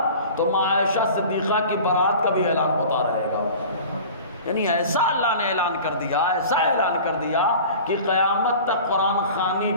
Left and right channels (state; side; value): inverted; both; correlation -0.40